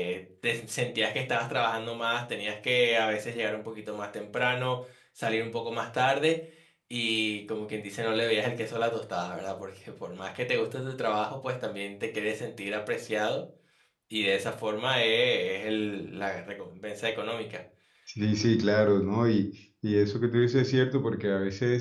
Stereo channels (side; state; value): both; identical; correlation 1.00